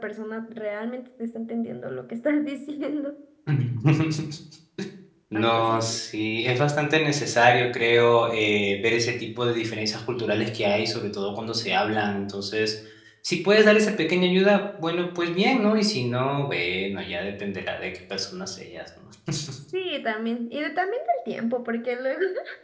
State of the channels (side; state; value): both; identical; correlation 1.00